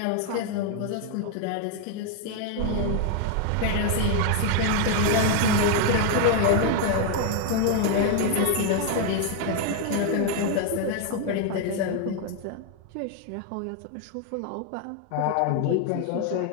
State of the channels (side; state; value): both; different; correlation 0.01